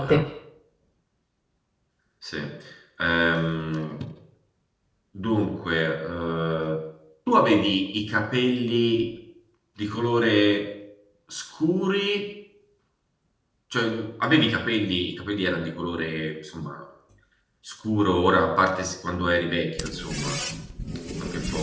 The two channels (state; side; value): identical; both; correlation 1.00